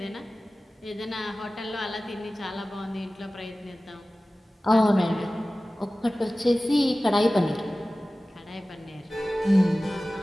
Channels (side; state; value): both; normal; correlation 0.97